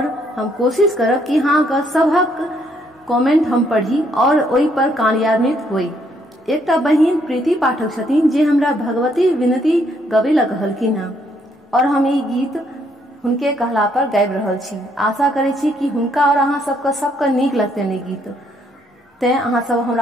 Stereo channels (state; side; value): normal; both; correlation 0.71